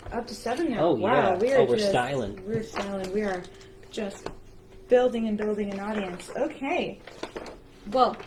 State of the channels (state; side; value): identical; both; correlation 1.00